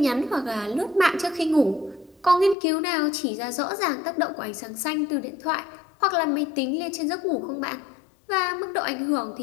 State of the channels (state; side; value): drops out; right; at 2.6 s